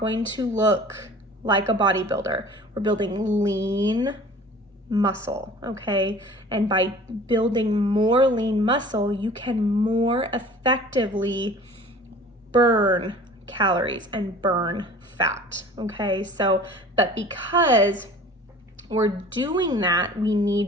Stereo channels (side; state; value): both; normal; correlation 0.45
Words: to look like a bodybuilder. We're building lean muscle, okay? And by building more lean muscle, you can more effectively burn calories and burn fat, okay? So, but because we're doing that, we